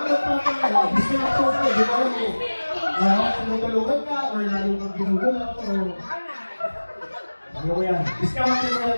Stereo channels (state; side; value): inverted; both; correlation -1.00